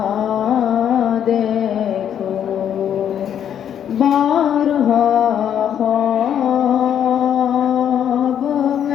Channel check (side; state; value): right; quieter; 9.3 dB